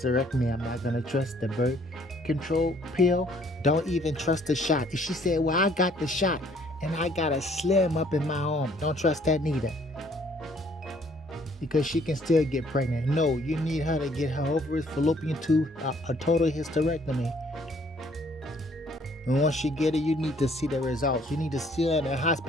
I'm not gonna trust the birth control pill. Don't even trust the shot. If she said, well, I got the shot and I got a slim up in my arm, don't trust that neither. Because she can still get pregnant. No, you need her to get her ovaries, fallopian tube, a total hysterectomy. And once she get it, you need to see the results. You need to see her in a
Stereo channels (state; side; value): normal; both; correlation 0.62